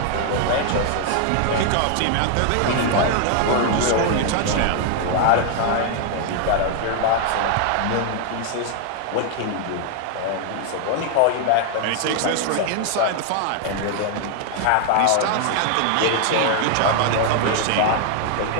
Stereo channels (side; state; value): both; different; correlation 0.00